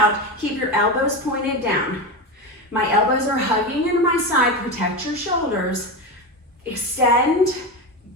Keep your elbows pointed down. My elbows are hugging into my side. Protect your shoulders. Extend,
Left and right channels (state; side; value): normal; both; correlation 0.19